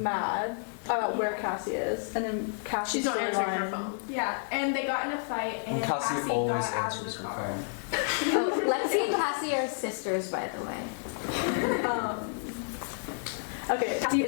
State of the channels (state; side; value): silent; right; 58 dB below the other